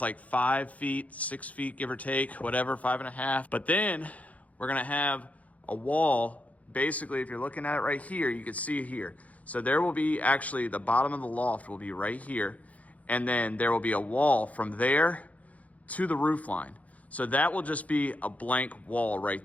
like 5 feet, 6 feet, give or take, whatever, 5.5. But then we're going to have a wall. Basically, if you're looking at it right here, you can see it here. So there will be actually, the bottom of the loft will be right here. And then there will be a wall from there to the roof line. So that will just be a blank wall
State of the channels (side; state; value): right; late; 0.070 ms